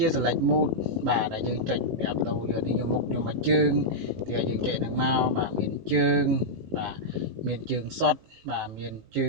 ា select mode បាទដែលយើងចុចប្រាប់ដូរយកនេះយកមុខយកមកជើងទីឲ្យយើងចុចហ្នឹងមកបាទមានជើងបាទមានជើងសុតបាទមានជើ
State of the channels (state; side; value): late; left; 19 ms